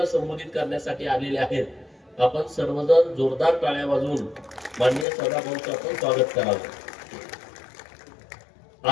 संबोधित करण्यासाठी आलेले आहेत. आपण सर्वजण जोरदार टाळ्या वाजवून माननीय सदाभाऊंचं आपण स्वागत करावं.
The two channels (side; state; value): right; drops out; at 5.1 s